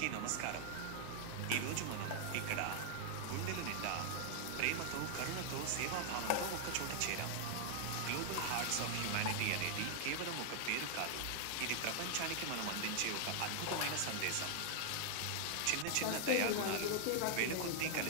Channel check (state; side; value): different; both; correlation 0.00